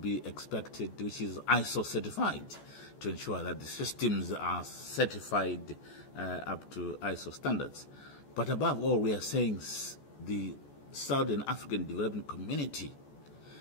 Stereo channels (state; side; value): late; right; 14 ms